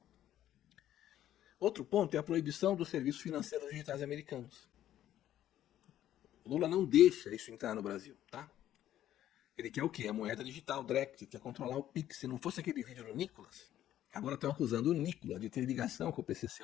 Outro ponto é a proibição dos serviços financeiros digitais americanos. O Lula não deixa isso entrar no Brasil, tá? Ele quer o quê? A moeda digital, direct, quer controlar o Pix. Se não fosse aquele vídeo do Nicolas, agora estão acusando o Nicolas de ter ligação com o PCC.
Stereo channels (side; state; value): right; quieter; 12.1 dB